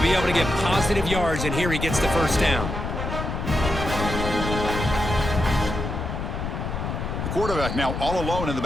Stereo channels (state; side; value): noise; left; rumble, 4 dB below the sound